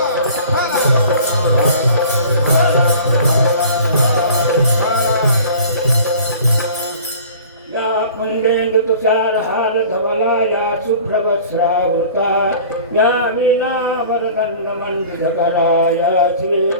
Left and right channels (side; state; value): both; inverted; correlation -0.45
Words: कुंडेंदु तुषार हार धवला या शुभ्रवस्त्रावृता या वीणा वरदंड मंडितकरा या